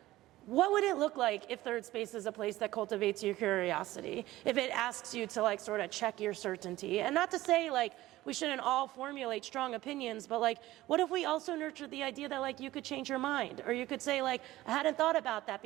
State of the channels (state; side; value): quieter; left; 16.5 dB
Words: what would it look like if Third Space is a place that cultivates your curiosity? If it asks you to like sort of check your certainty? And not to say like we shouldn't all formulate strong opinions, but like what if we also nurtured the idea that like you could change your mind? Or you could say like, I hadn't thought about that